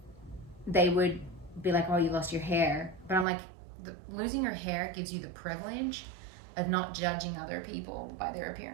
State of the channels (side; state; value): left; drops out; at 3.2 s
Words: They would be like, oh, you lost your hair. But I'm like, losing your hair gives you the privilege of not judging other people by their